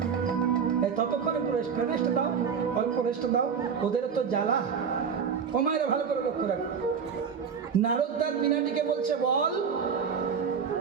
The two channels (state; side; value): quieter; left; 6.6 dB